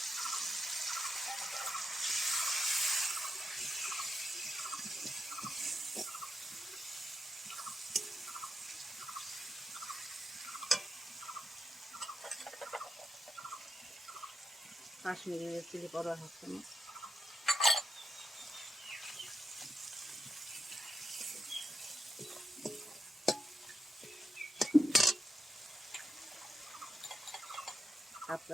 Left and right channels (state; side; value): normal; both; correlation 0.85